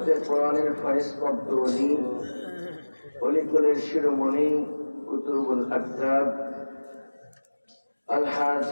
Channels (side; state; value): both; inverted; correlation -1.00